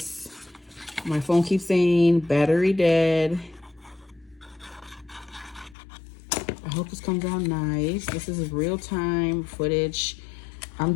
My phone keeps saying battery dead. I hope this comes out nice. This is real-time footage. I'm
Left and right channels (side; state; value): right; drops out; at 5.8 s